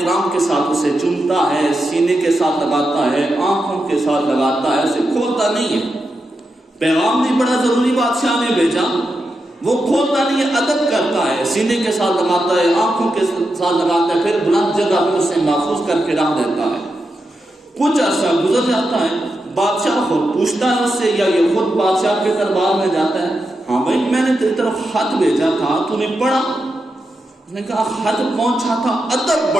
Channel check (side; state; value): both; normal; correlation 0.87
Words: کے ساتھ اسے چومتا ہے، سینے کے ساتھ لگاتا ہے، آنکھوں کے ساتھ لگاتا ہے، اسے کھولتا نہیں ہے۔ پیغام بھی بڑا ضروری بادشاہ نے بھیجا، وہ کھولتا نہیں ہے، ادب کرتا ہے، سینے کے ساتھ لگاتا ہے، آنکھوں کے ساتھ لگاتا ہے، پھر بلند جگہ پہ اسے محفوظ کر کے رکھ دیتا ہے۔ کچھ عرصہ گزر جاتا ہے، بادشاہ خود پوچھتا ہے اس سے، یا یہ خود بادشاہ کے دربار میں جاتا ہے، ہاں بھائی میں نے تیری طرف خط بھیجا تھا، تو نے پڑھا؟ اس نے کہا خط پہنچا تھا، ادب